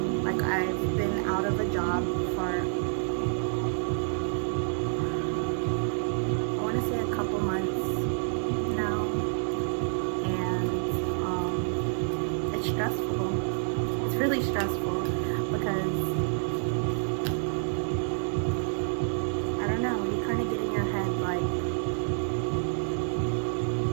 Like, I've been out of a job for, I want to say a couple months now, and it's stressful. It's really stressful because I don't know, you kind of get in your head like,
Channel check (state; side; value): silent; left; 59 dB below the other